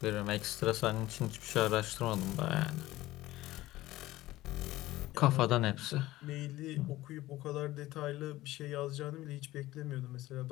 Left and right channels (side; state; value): right; quieter; 16.9 dB